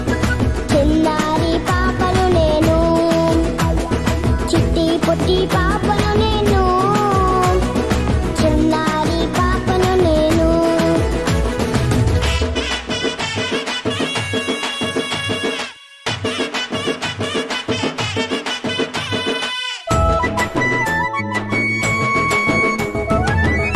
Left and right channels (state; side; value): identical; both; correlation 1.00